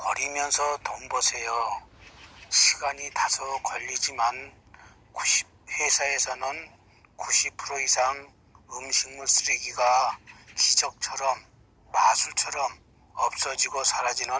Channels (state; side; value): identical; both; correlation 1.00